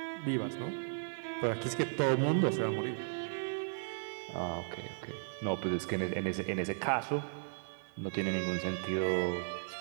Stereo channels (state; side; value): silent; left; digital silence